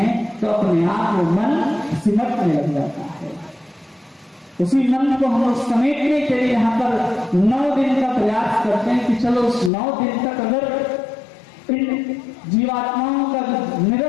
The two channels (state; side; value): drops out; right; at 9.7 s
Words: तो अपने आप में मन सिमटने लग जाता है। उसी मन को हम समेटने के लिए यहाँ पर 9 दिन का प्रयास करते हैं कि चलो उस 9 दिन तक अगर इन जीवात्माओं का